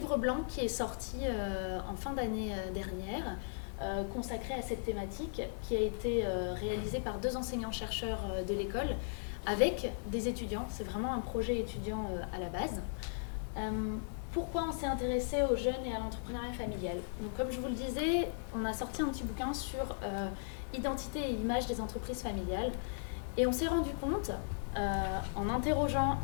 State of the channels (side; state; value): right; silent; digital silence